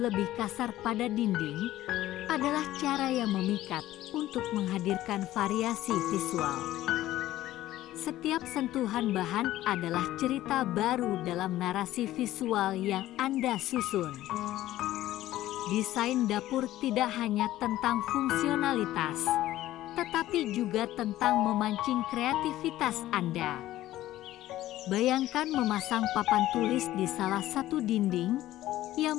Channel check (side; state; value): right; quieter; 14.7 dB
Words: kasar pada dinding adalah cara yang memikat untuk menghadirkan variasi visual. Setiap sentuhan bahan adalah cerita baru dalam narasi visual yang Anda susun. Desain dapur tidak hanya tentang fungsionalitas, tetapi juga tentang memancing kreativitas Anda. Bayangkan memasang papan tulis di salah satu dinding yang